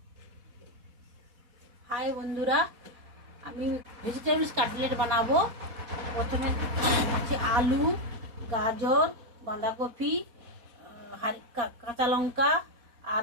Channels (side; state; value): left; late; 4.1 ms